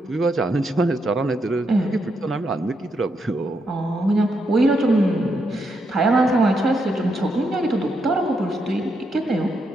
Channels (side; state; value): both; normal; correlation 0.80